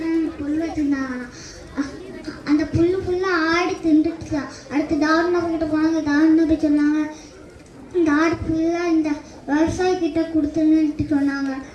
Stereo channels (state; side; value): identical; both; correlation 1.00